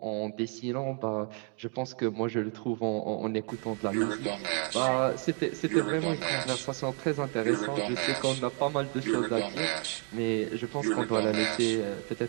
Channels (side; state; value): left; quieter; 37.9 dB